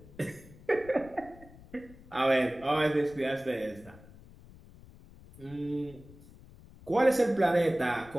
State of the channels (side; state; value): left; noise; rumble, 21 dB below the sound